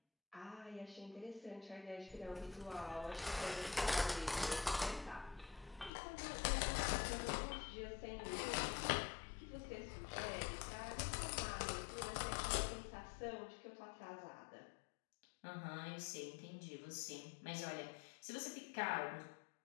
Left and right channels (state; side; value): drops out; right; at 5.9 s